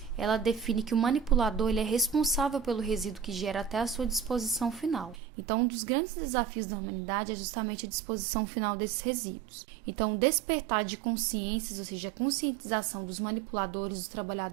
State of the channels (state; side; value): drops out; left; at 5.2 s